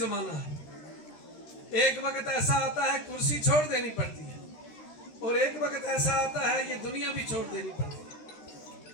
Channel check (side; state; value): right; late; 13 ms